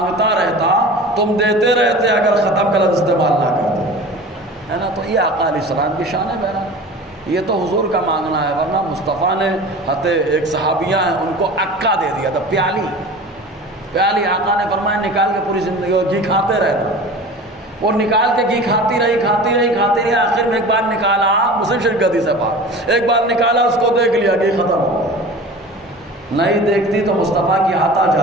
رہتا تم دیتے رہتے، اگر ختم کا لفظ استعمال نہ کرتے، ہے نا؟ تو یہ آقا علیہ السلام کی شان ہے بہرحال، یہ تو حضور کا مانگنا ہے، ورنہ مصطفیٰ نے ایک صحابیہ ہیں ان کو عکا دے دیا تھا، پیالی آقا نے فرمایا نکال کے پوری زندگی گھی کھاتے رہنا۔ وہ نکال کے گھی کھاتی رہی، آخر میں ایک بار نکالا، مسلم شریف کا حدیث ہے پاک، ایک بار نکالا اس کو دیکھ لیا گھی ختم ہو گیا، نہیں دیکھتی تو مصطفیٰ کی عطا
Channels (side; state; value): both; normal; correlation 0.37